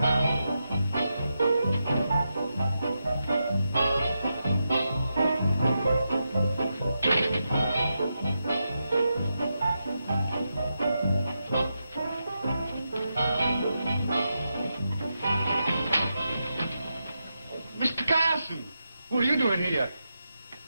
What are you doing here?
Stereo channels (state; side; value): inverted; both; correlation -0.87